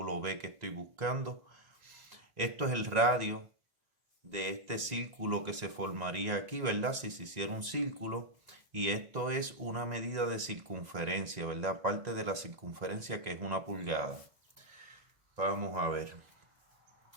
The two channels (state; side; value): late; left; 1.9 ms